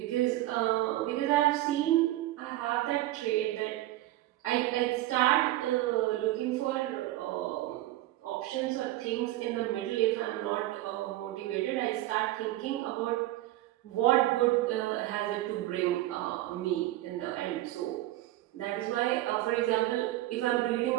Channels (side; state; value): left; quieter; 16.2 dB